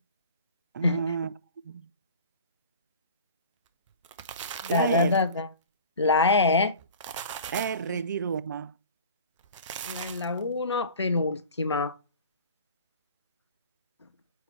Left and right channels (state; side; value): inverted; both; correlation -0.40